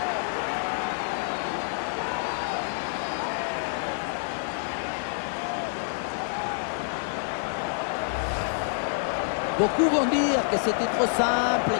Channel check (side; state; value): right; silent; 60 dB below the other